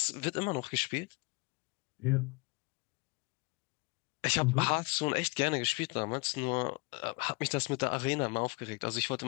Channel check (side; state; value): right; quieter; 27.9 dB